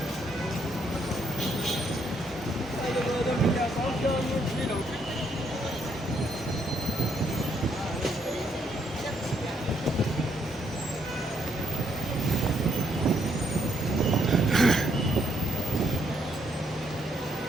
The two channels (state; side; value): normal; both; correlation 0.73